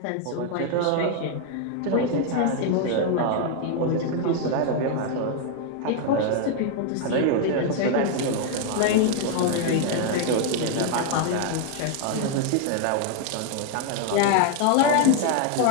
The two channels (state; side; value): different; both; correlation 0.00